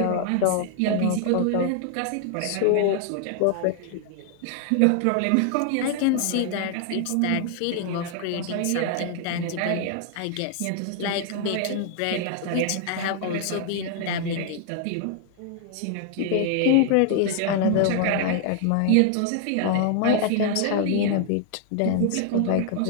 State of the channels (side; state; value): both; different; correlation 0.00